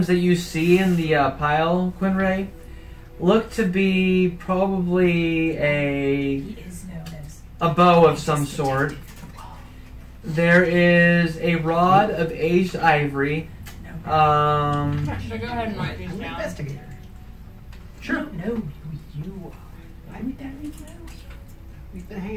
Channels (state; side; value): identical; both; correlation 1.00